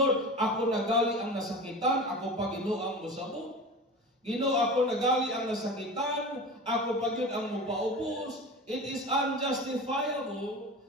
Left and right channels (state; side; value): normal; both; correlation 0.32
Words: Ako nagali ang nasakitan, ako pa Ginoo ang musabot. Ginoo, ako nagali ang nasakitan, ako pa yun ang mupaubos. It is unjustifiable